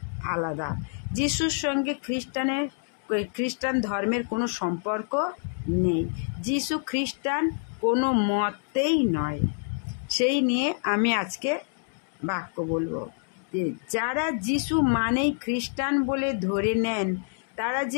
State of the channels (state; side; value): silent; right; digital silence